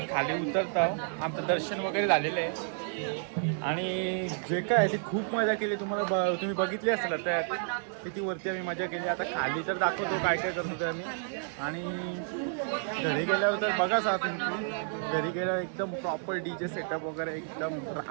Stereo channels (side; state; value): left; silent; digital silence